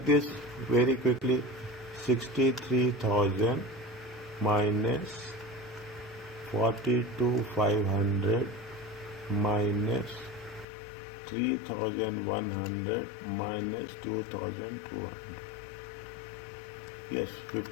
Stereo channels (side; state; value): right; drops out; at 10.7 s